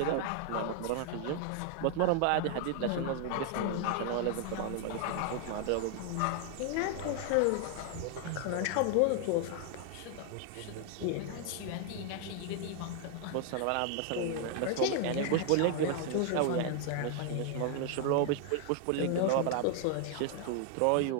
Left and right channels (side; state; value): both; different; correlation 0.00